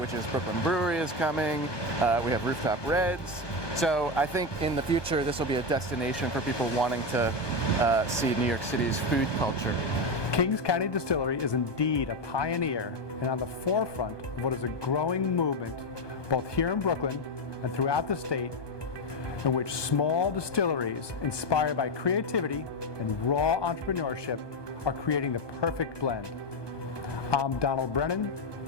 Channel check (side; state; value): right; late; 1.2 ms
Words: which is Brooklyn Brewery is coming. We have Rooftop Reds. So I think in the future, this will be a destination for people wanting to see New York City's food culture. Kings County Distillery is indeed a pioneer and on the forefront of what is a growing movement, both here in Brooklyn and throughout the state, in which small distilleries inspired by creativity and raw entrepreneurship are creating the perfect blend. I'm Donald Brennan